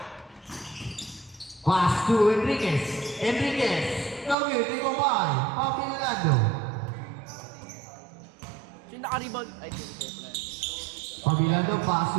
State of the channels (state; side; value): drops out; left; at 4.4 s